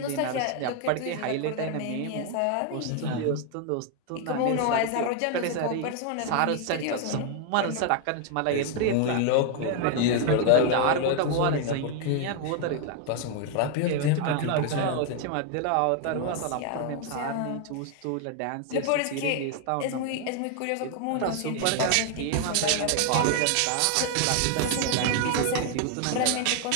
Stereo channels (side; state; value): both; different; correlation 0.00